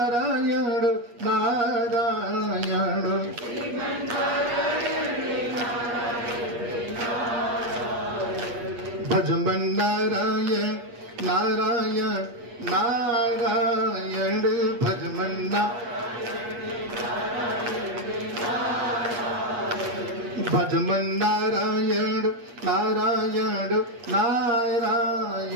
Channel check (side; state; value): left; late; 8.4 ms